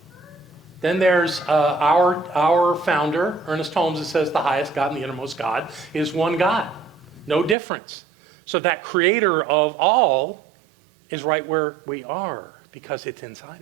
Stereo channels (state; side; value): drops out; left; at 7.6 s